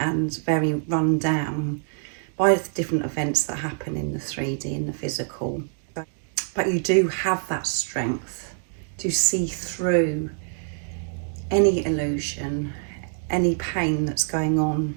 very run down by the different events that happen in the 3D, in the physical. But you do have that strength to see through any illusion, any pain that's going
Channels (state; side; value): silent; left; 62 dB below the other